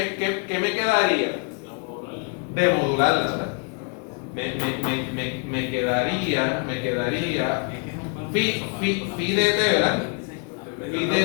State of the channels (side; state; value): right; quieter; 36.6 dB